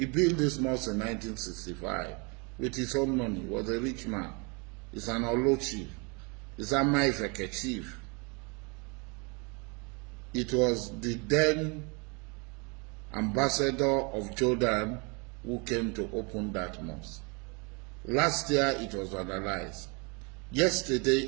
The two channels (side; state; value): left; quieter; 31.7 dB